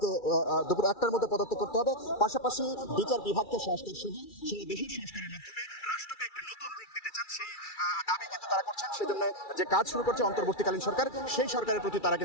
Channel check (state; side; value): late; right; 2.3 ms